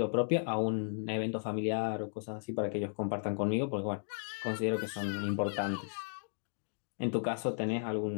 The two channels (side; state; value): right; silent; digital silence